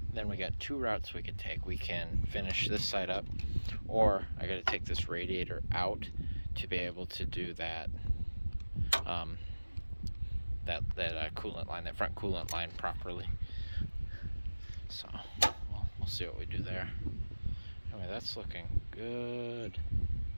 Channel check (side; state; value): both; inverted; correlation -1.00